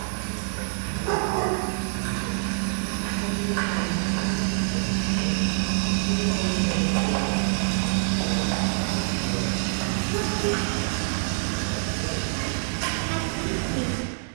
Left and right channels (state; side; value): silent; left; digital silence